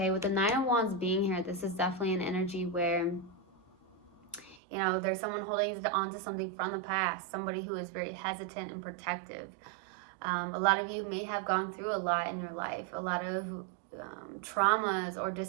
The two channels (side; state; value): left; drops out; at 4.6 s